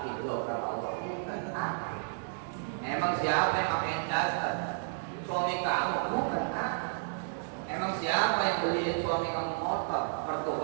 lo kata Allah. Bukan aku. Emang siapa yang pakaiin daster? Suami kamu? Bukan aku. Emang siapa yang beliin suami kamu motor?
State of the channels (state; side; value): silent; left; 56 dB below the other